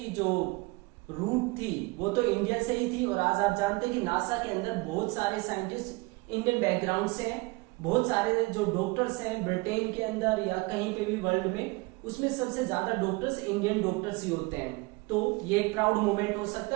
जो रूट थी वो तो इंडिया से ही थी। और आज आप जानते हैं कि नासा के अंदर बहुत सारे साइंटिस्ट इंडियन बैकग्राउंड से हैं, बहुत सारे जो डॉक्टर्स हैं ब्रिटेन के अंदर या कहीं पे भी वर्ल्ड में, उसमें सबसे ज्यादा डॉक्टर्स इंडियन डॉक्टर्स ही होते हैं। तो ये एक प्राउड मोमेंट हो सकता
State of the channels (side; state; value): left; quieter; 25.3 dB